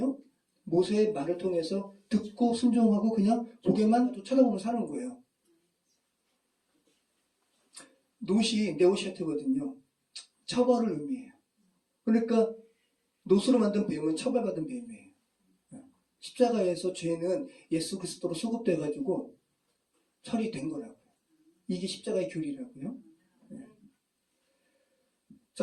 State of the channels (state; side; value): identical; both; correlation 1.00